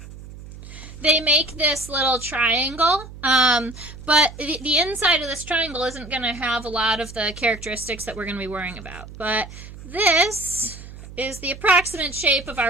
They make this little triangle, but the inside of this triangle isn't going to have a lot of the characteristics that we're going to be worrying about. But this is the approximate shape of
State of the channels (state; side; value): noise; right; hum, 15 dB below the sound